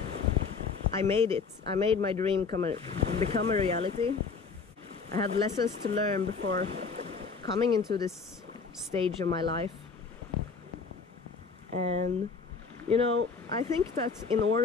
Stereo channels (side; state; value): right; quieter; 5.1 dB